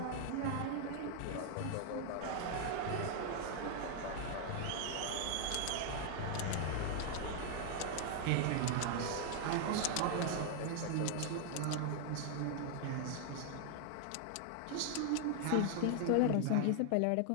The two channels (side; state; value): both; different; correlation 0.00